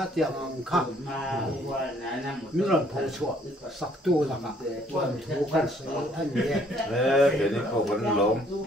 tiang kha min lan pho chua sak tu la ka thu kan se an ye ke ni ko ban lom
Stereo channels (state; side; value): normal; both; correlation 0.63